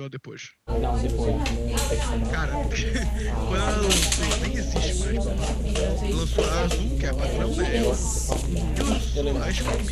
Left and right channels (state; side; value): identical; both; correlation 1.00